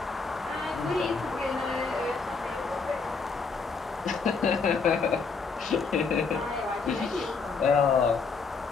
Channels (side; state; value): right; quieter; 4.8 dB